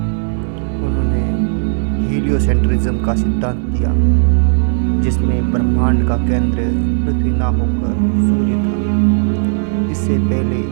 उन्होंने हीलियोसेंट्रिज्म का सिद्धांत दिया, जिसमें ब्रह्मांड का केंद्र पृथ्वी न होकर सूर्य था। इससे पहले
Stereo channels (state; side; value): silent; left; 69 dB below the other